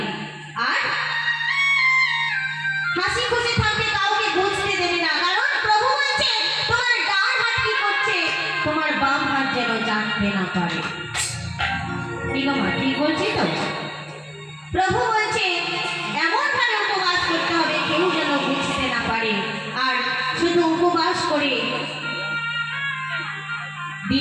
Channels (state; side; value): identical; both; correlation 1.00